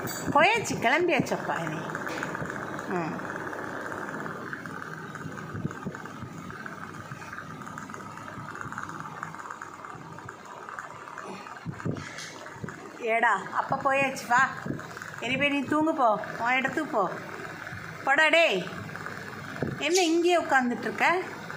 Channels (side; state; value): both; identical; correlation 1.00